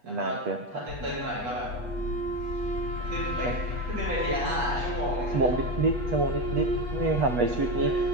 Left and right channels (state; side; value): late; left; 8.2 ms